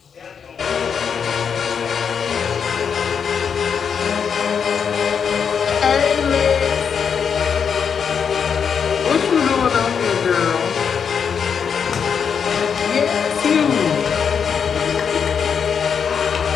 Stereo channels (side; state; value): right; quieter; 6.9 dB